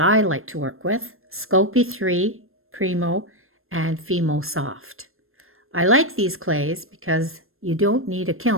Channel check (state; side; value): late; left; 0.61 ms